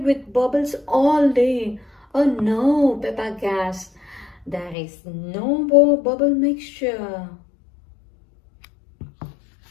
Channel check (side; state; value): right; drops out; at 4.8 s